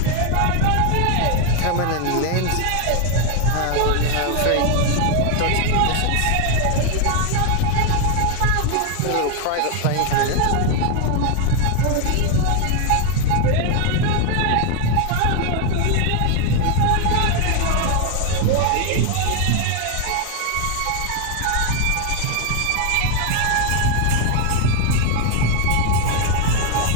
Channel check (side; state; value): both; different; correlation 0.01